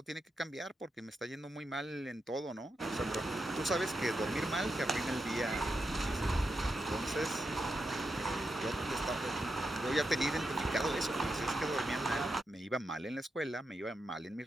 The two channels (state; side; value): normal; both; correlation 0.86